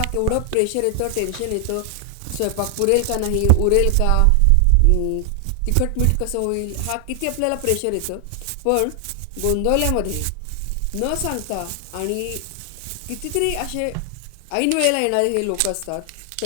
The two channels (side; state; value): both; different; correlation 0.00